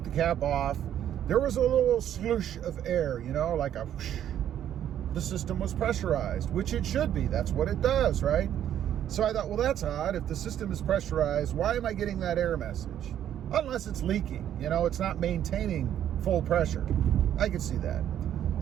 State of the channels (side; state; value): left; quieter; 10.6 dB